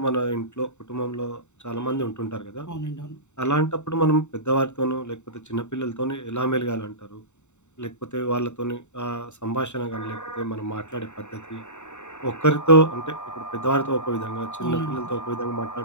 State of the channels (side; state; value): right; late; 0.84 ms